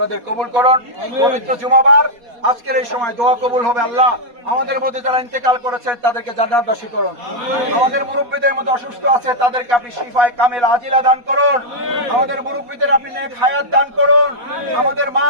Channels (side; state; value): left; late; 4.2 ms